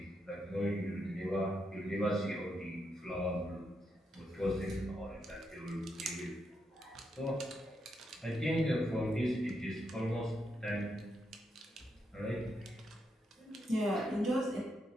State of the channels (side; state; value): both; normal; correlation 0.82